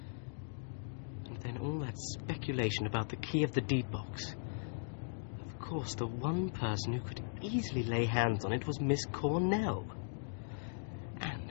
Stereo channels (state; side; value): silent; right; digital silence